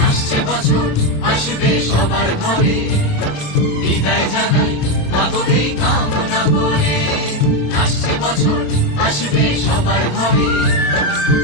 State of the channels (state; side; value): late; right; 27 ms